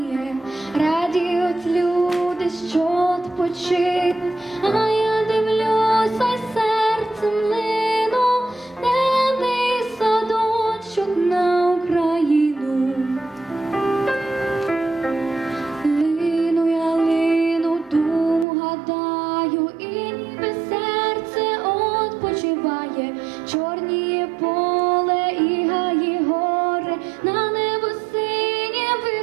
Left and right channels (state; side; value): drops out; left; at 18.4 s